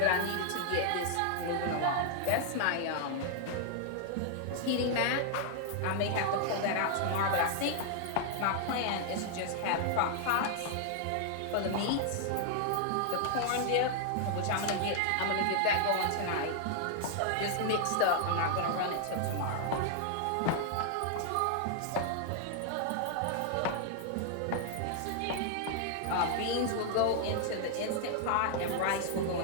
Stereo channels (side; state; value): both; different; correlation 0.00